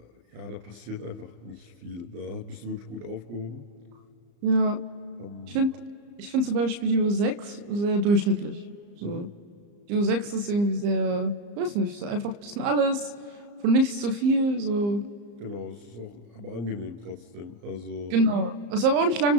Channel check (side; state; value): left; late; 34 ms